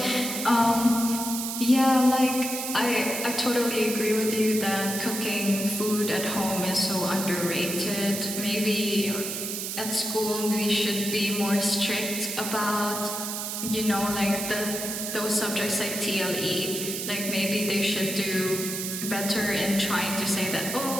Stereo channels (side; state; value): right; noise; hiss, 4 dB below the sound